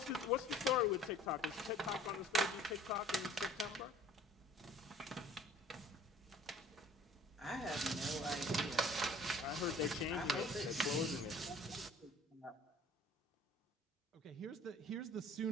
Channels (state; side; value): normal; both; correlation 0.52